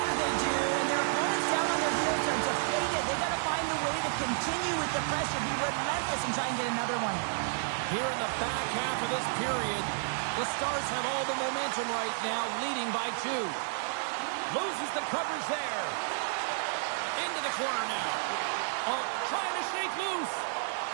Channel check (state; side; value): silent; left; digital silence